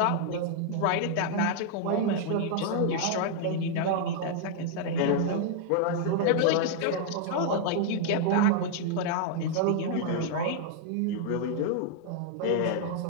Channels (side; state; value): both; different; correlation -0.01